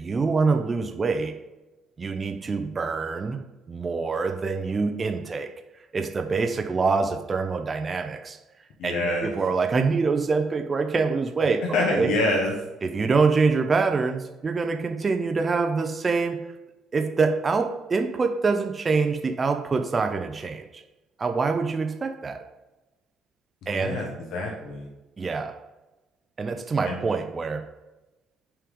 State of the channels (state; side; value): quieter; left; 3.4 dB